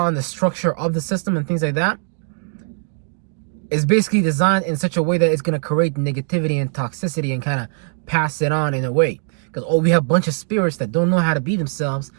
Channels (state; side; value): silent; left; 55 dB below the other